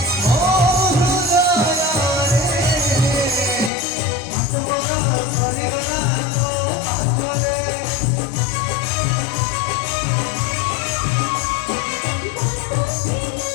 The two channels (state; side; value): drops out; right; at 3.7 s